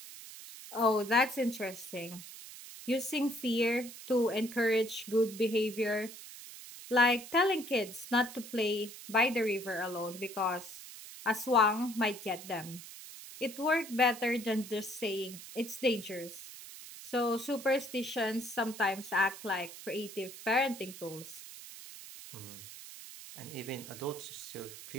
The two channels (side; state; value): right; noise; hiss, 14 dB below the sound